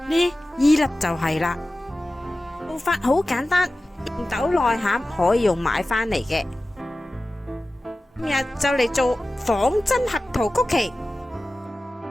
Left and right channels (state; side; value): normal; both; correlation 0.95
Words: 呢依粒就係啦。做法好簡單，紅豆內餡可以用買返嚟嘅。今日就嚟做仿真合桃曲奇。